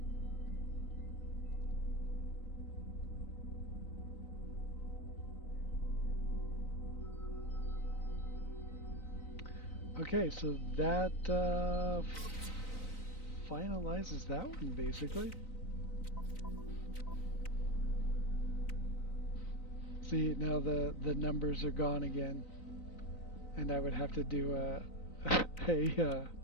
Okay, so that finalizes that one, basically. See, now the numbers are gone again, and I would have to do a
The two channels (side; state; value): right; late; 3.9 ms